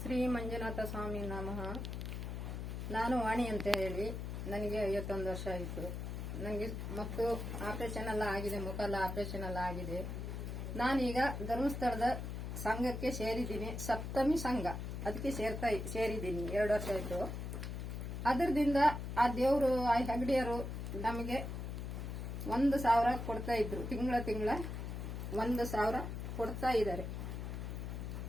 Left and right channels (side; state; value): left; noise; hum, 5 dB below the sound